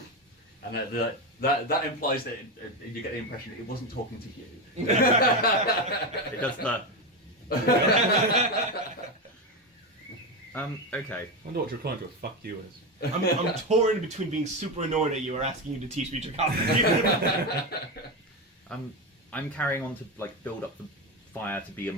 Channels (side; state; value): both; normal; correlation 0.14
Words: And that implies that you get the impression that it wasn't talking to you. It does the. Okay. I wonder what Draconic with fuck you is. I'm torn between being super annoyed at you or asking you to teach me Draconic. I'm carrying on to like build up the fire to be a